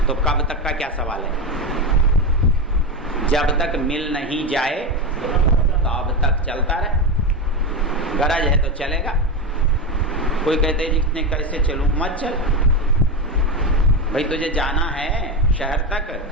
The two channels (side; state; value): both; normal; correlation 0.15